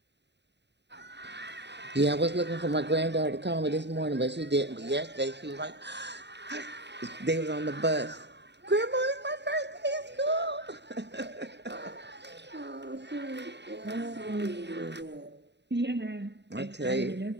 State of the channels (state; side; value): late; left; 0.50 ms